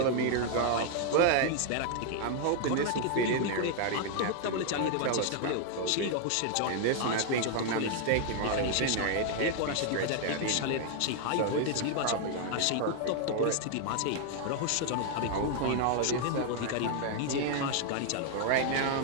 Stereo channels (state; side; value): different; both; correlation 0.00